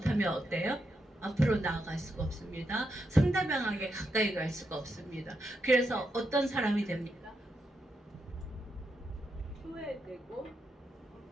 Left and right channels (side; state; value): both; normal; correlation 0.83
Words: 어때요? 앞으로 나아갈 수가 없습니다. 상대방에게 가까이 갈 수가 없습니다. 그래서 어떤 사람이 됩니까? 소외되고